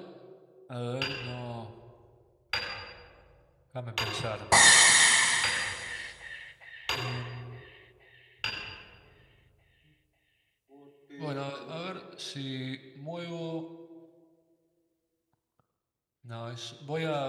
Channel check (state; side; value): identical; both; correlation 1.00